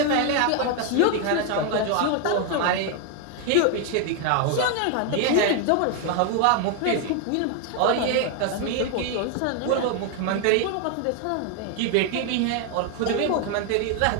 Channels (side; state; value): both; different; correlation 0.01